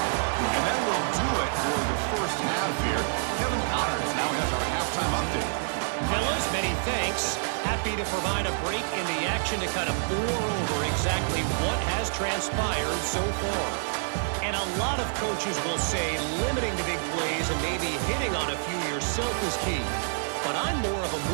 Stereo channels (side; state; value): left; silent; digital silence